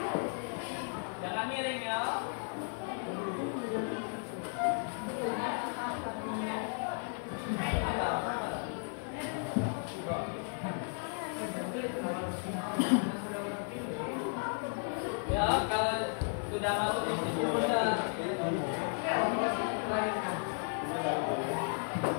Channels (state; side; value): silent; right; 55 dB below the other